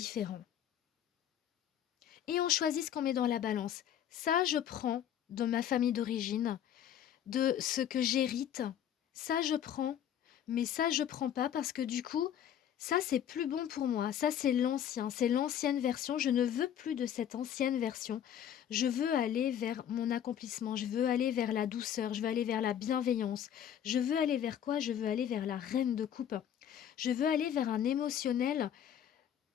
Et on choisit ce qu'on met dans la balance. Ça, je prends de ma famille d'origine, de ce que j'hérite. Ça, je prends, mais ça, je prends pas parce que du coup, ça, c'est plus bon pour moi. Ça, c'est l'ancien, c'est l'ancienne version. Je ne veux plus de cette ancienne version. Je veux aller vers mon accomplissement. Je veux aller vers la douceur. Je veux aller vers la bienveillance. Je veux aller vers quoi? Je veux aller vers la reine de coupe. Je veux aller vers un émotionnel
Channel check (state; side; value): quieter; right; 9.9 dB